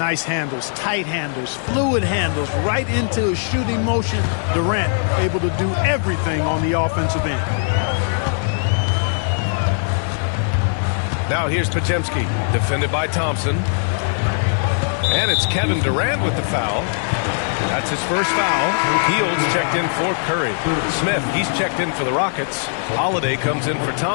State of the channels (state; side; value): silent; right; digital silence